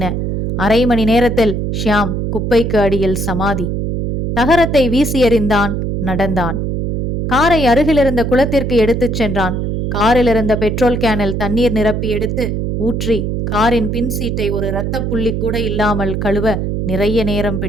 அரை மணி நேரத்தில் ஷியாம் குப்பைக்கு அடியில் சமாதி. தகரத்தை வீசி எறிந்தான். நடந்தான். காரை அருகிலிருந்த குளத்திற்கு எடுத்துச் சென்றான். காரில் இருந்த பெட்ரோல் கேனில் தண்ணீர் நிரப்பி எடுத்து ஊற்றி காரின் பின் சீட்டை ஒரு இரத்தப் புள்ளி கூட இல்லாமல் கழுவ நிறைய நேரம்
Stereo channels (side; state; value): right; noise; hum, 2 dB below the sound